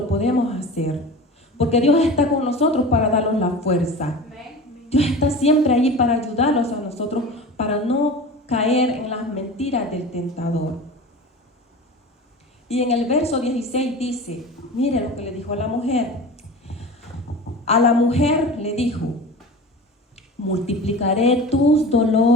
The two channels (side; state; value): both; normal; correlation 0.34